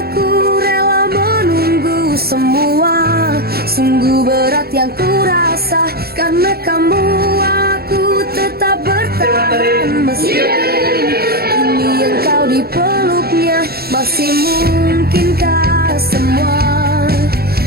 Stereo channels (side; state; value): left; late; 0.45 ms